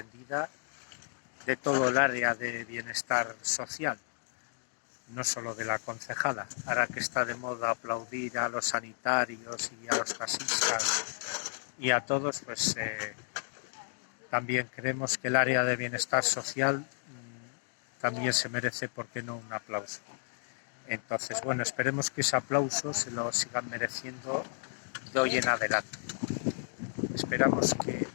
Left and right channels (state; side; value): silent; right; digital silence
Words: de todo el área de bienestar social, no solo de la concejala. Ahora que está de moda aplaudir a los sanitarios y a los taxistas y a todos, pues también creemos que el área de bienestar social también se merece, ¿por qué no?, un aplauso. Entonces, bueno, esperemos que ese aplauso se lo sigan mereciendo de hoy en adelante. Esperamos que